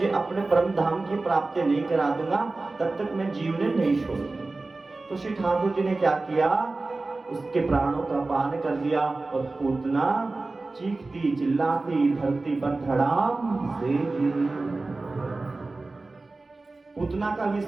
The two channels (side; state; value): left; quieter; 3.4 dB